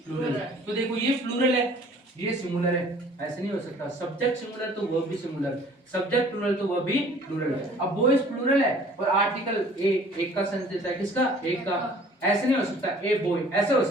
plural. तो देखो ये प्लूरल है, ये सिंगुलर है, ऐसे नहीं हो सकता, सब्जेक्ट सिंगुलर तो वर्ब भी सिंगुलर, सब्जेक्ट प्लूरल तो वर्ब भी प्लूरल। अब बॉयज प्लूरल है और आर्टिकल ए एक का सेंस देता है, किसका, एक का, ऐसे नहीं हो सकता ए बॉय, ऐसे हो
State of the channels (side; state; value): both; normal; correlation 0.52